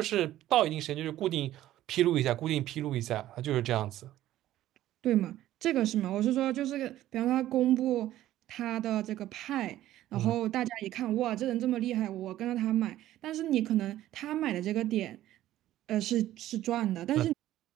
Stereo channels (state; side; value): quieter; left; 13.8 dB